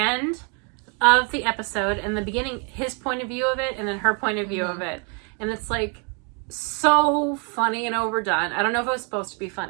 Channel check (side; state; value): left; quieter; 36.6 dB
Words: of the episode, and the beginning, his point of view of it, and then her point of view of it. And it's like... so funny and overdone. I don't know if it was supposed to be